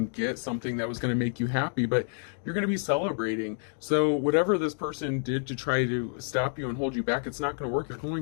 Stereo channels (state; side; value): silent; right; digital silence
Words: get something that was going to make you happy, but you're going to be celebrating. So whatever this person did to try to stop you and hold you back, it's not going to work. You're